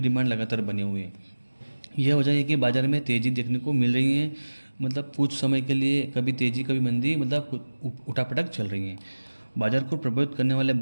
लगातार बनी हुई है। यह वजह है कि बाजार में तेज़ी देखने को मिल रही है। मतलब कुछ समय के लिए कभी तेज़ी कभी मंदी, मतलब उठापटक चल रही है। बाजार को प्रभावित करने वाले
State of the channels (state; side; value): inverted; both; correlation -1.00